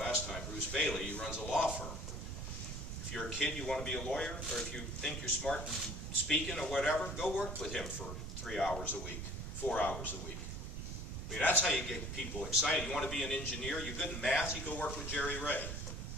time. Bruce Bailey, he runs a law firm. If you're a kid, you want to be a lawyer, or if you think you're smart in speaking or whatever, go work with him for 3 hours a week, 4 hours a week. I mean, that's how you get people excited. You want to be an engineer, you're good in math, you go work with Jerry Ray.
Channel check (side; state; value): right; noise; rumble, 6 dB below the sound